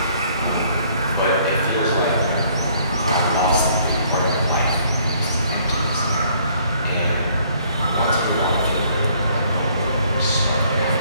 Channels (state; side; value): inverted; both; correlation -0.63